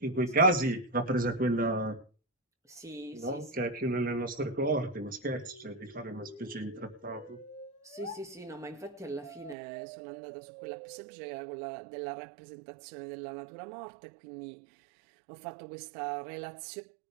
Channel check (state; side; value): drops out; left; at 9.6 s